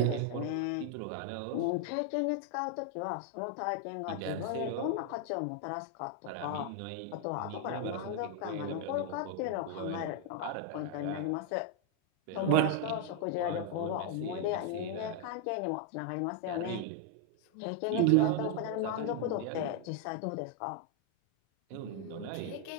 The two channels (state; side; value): different; both; correlation 0.00